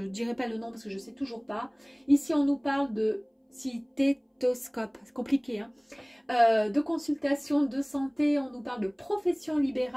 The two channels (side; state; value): both; identical; correlation 1.00